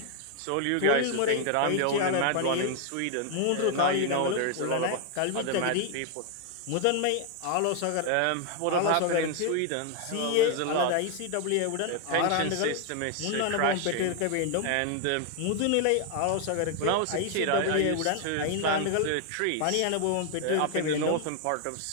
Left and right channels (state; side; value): different; both; correlation 0.00